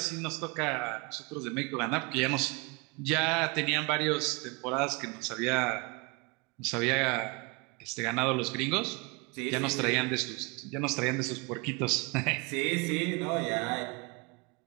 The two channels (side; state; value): left; quieter; 29.0 dB